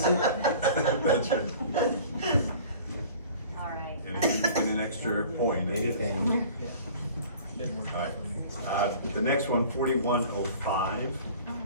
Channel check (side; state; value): both; inverted; correlation -0.46